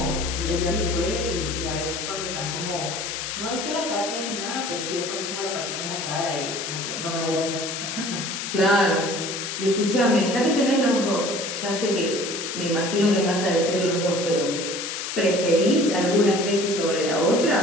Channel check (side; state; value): left; noise; hiss, 5 dB below the sound